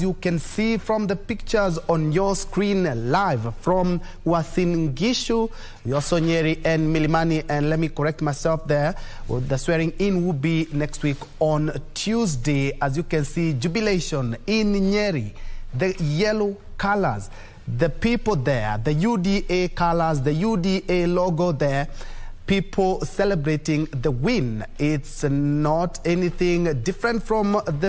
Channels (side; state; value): both; identical; correlation 1.00